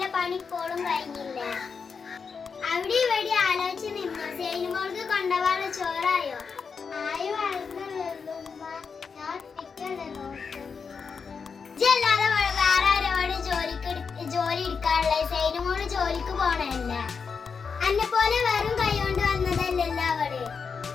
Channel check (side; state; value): right; quieter; 5.6 dB